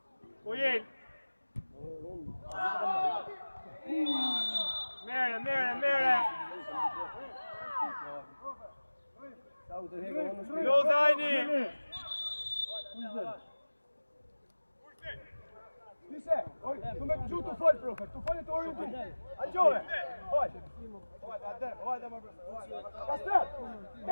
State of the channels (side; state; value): both; inverted; correlation -1.00